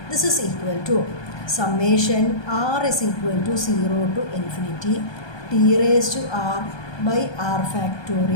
This is equal to summation r is equal to 0 to infinity t⁻r/r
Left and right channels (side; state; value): right; late; 1.2 ms